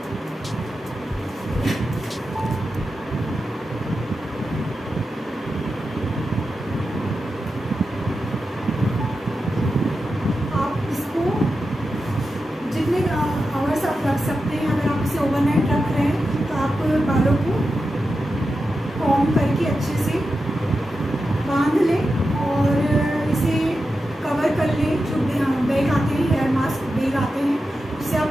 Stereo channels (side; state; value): both; normal; correlation 0.90